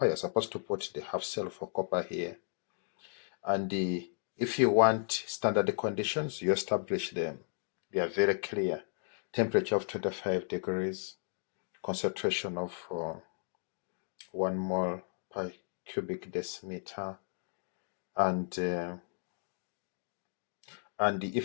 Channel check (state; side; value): silent; right; digital silence